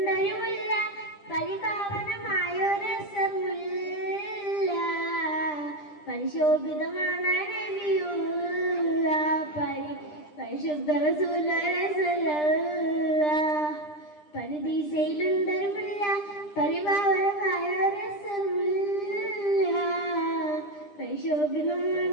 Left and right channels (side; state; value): right; late; 10 ms